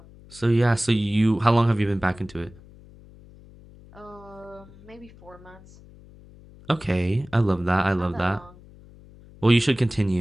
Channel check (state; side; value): noise; left; hum, 22 dB below the sound